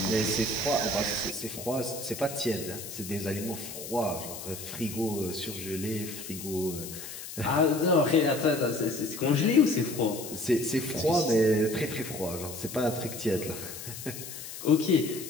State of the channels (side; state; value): left; noise; hiss, 10 dB below the sound